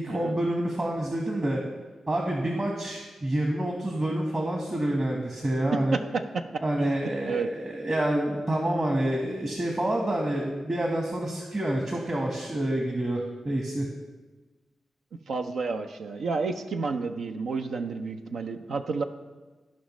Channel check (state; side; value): normal; both; correlation 0.92